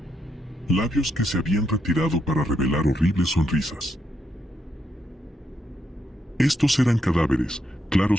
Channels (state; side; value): normal; both; correlation 0.79